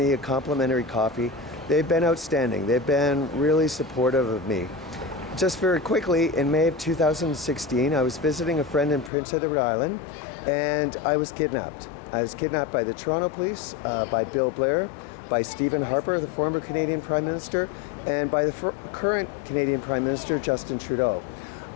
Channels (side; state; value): right; drops out; at 9.1 s